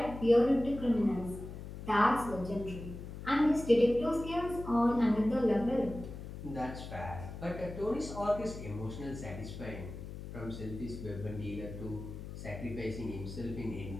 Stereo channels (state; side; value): noise; left; hum, 10 dB below the sound